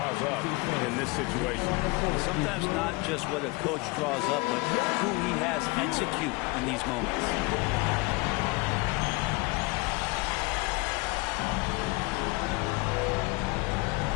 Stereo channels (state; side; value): quieter; right; 25.0 dB